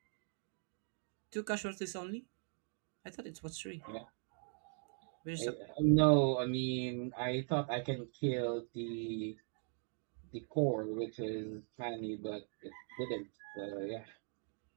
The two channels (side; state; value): left; silent; 51 dB below the other